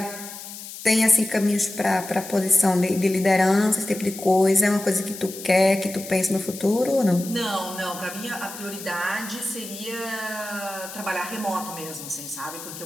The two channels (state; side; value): noise; left; hiss, 12 dB below the sound